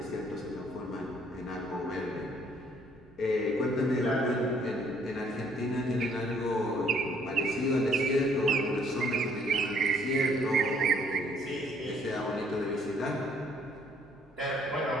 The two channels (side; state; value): both; normal; correlation 0.63